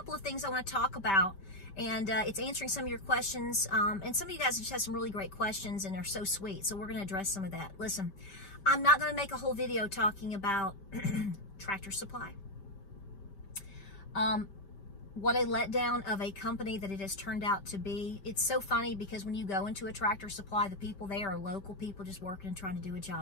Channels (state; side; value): late; right; 5.1 ms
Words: of things I want to talk about. And it's answering some of your questions. And some of you guys just have some really great questions, and they're so sweet. So we're going to address some of that. Listen, I'm not going to make a whole video talking about Tractor Supply. What a letdown of a company that it has turned out to be. It's so funny because when you go into a Tractor Supply, the people there are local people just working and trying to do a